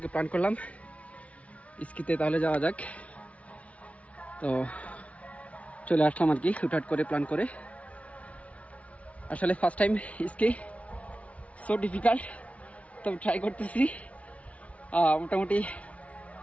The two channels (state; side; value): late; right; 0.065 ms